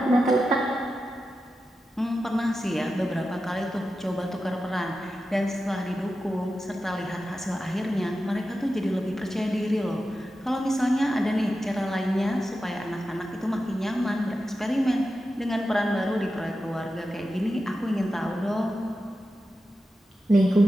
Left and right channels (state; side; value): normal; both; correlation 0.91